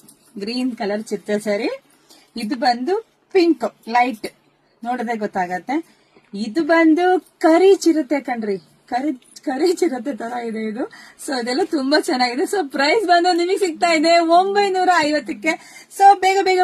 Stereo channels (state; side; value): identical; both; correlation 1.00